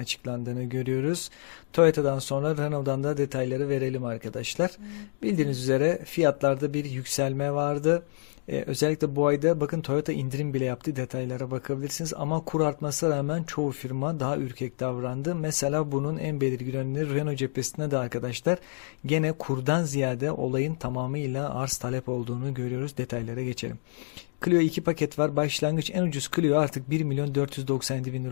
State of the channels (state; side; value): silent; right; digital silence